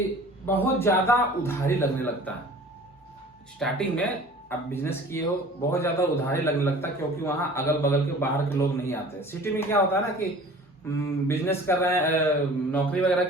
बहुत ज्यादा उधारी लगने लगता है। स्टार्टिंग में आप बिजनेस किए हो, बहुत ज्यादा उधारी लगने लगता है, क्योंकि वहां अगल बगल के बाहर के लोग नहीं आते। सिटी में क्या होता है ना कि बिजनेस कर रहे हैं, नौकरी वगैरह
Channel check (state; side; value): normal; both; correlation 0.46